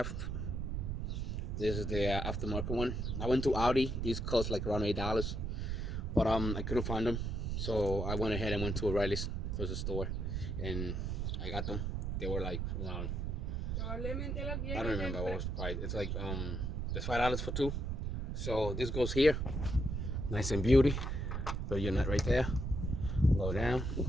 This is the aftermarket one. I went to Audi. These cost like around $8, but I couldn't find them, so I went ahead and went to O'Reilly's closest store, and I got them. They were like around, I don't remember what was the price. It's like there's $5 for two. So this goes here, nice and beauty. Put your nut right there. Go down,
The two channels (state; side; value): noise; right; rumble, 1 dB below the sound